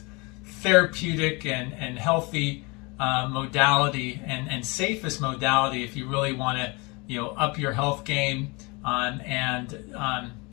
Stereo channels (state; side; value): quieter; right; 27.6 dB